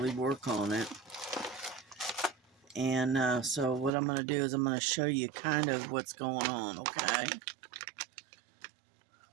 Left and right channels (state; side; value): drops out; left; at 3.9 s